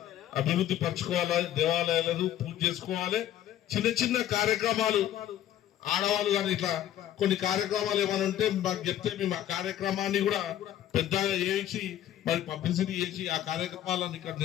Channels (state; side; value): quieter; right; 11.8 dB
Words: అభివృద్ధి పరచుకోవాలి, దేవాలయాలను పూజ చేసుకోవాలి. చిన్న కార్యక్రమాలు ఆడవాళ్ళు కానీ ఇట్లా కొన్ని కార్యక్రమాలు ఏమైనా ఉంటే మాకు చెప్తే మేము ఆ కార్యక్రమాన్ని కూడా పెద్దగా చేసి మరి పబ్లిసిటీ చేసి ఆ కార్యక్రమాలను ఇక్కడ